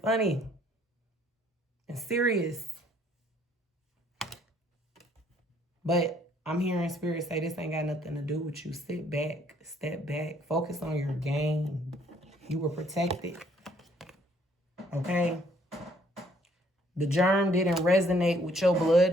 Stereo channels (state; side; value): normal; both; correlation 0.64